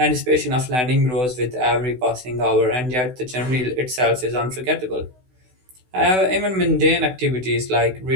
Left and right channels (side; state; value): left; late; 16 ms